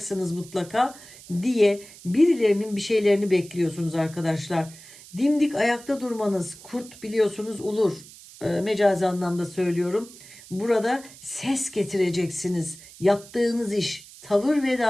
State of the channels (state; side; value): noise; right; hiss, 19 dB below the sound